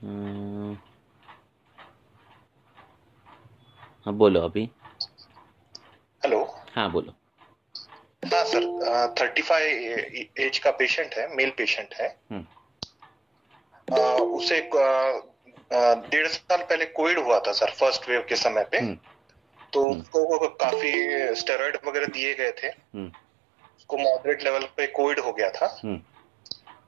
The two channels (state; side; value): drops out; left; at 19.9 s